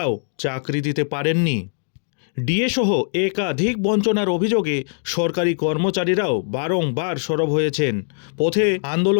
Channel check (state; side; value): silent; right; digital silence